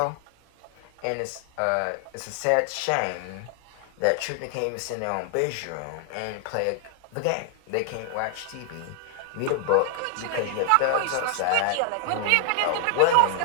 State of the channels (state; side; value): different; both; correlation 0.00